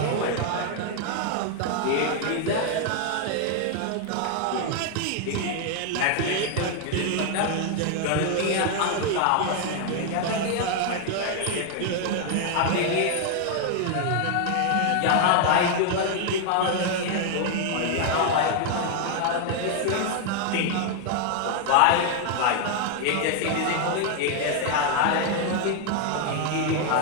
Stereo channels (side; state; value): both; different; correlation 0.00